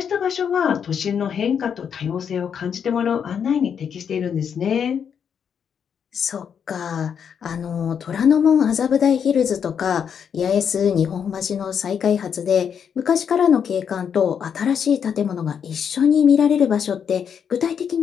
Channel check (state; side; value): quieter; right; 7.5 dB